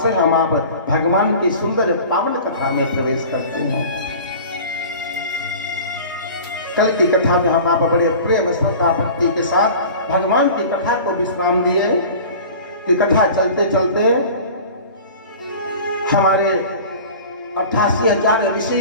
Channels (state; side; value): inverted; both; correlation -0.40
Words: हम आप भगवान की सुंदर पावन कथा में प्रवेश करते हैं। कल की कथा में हम आप बड़े प्रेम श्रद्धा भक्ति के साथ भगवान की कथा को विश्राम दिए कि कथा चलते चलते हमारे 88,000